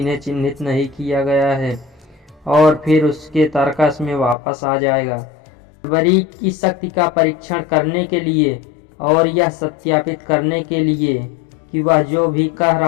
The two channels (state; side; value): drops out; right; at 4.4 s